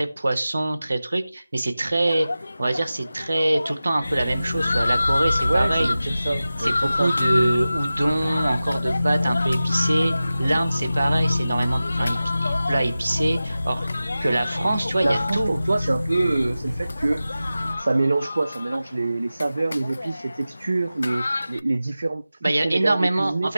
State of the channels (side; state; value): both; inverted; correlation -0.95